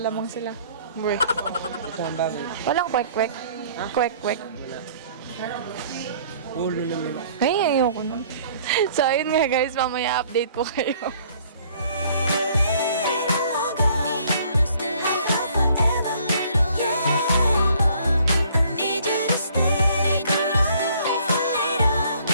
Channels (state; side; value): inverted; both; correlation -0.58